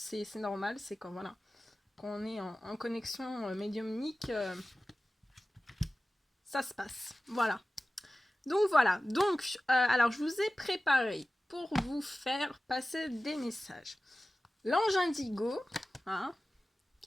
normal, c'est quand, voilà... Quand on est en connexion médiumnique, ça se passe. Voilà. Donc voilà. Donc, alors je vous ai préparé pour vous faire passer des messages. L'ange indigo, hein,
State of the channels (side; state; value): both; normal; correlation 0.96